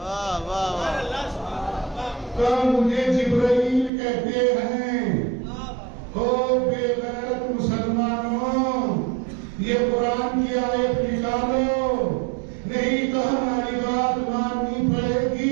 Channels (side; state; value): left; drops out; at 3.9 s